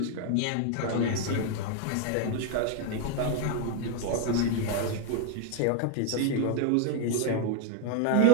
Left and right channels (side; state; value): both; different; correlation 0.01